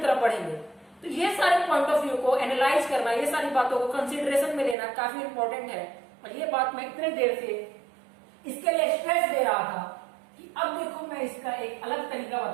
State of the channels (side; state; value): left; drops out; at 4.8 s